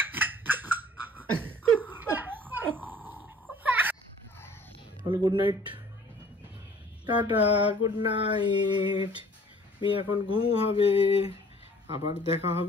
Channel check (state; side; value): normal; both; correlation 0.52